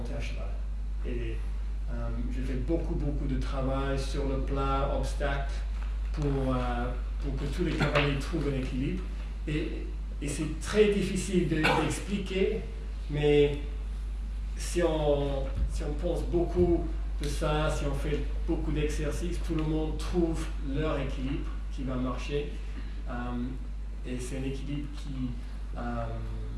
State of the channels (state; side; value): identical; both; correlation 1.00